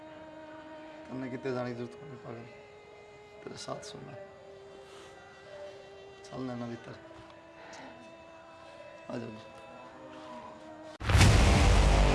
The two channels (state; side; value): identical; both; correlation 1.00